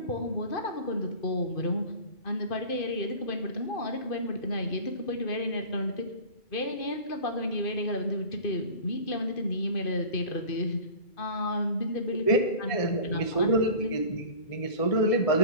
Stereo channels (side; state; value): right; late; 2.5 ms